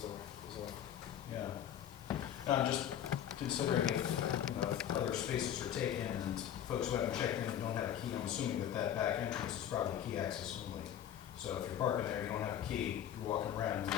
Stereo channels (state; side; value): quieter; right; 10.2 dB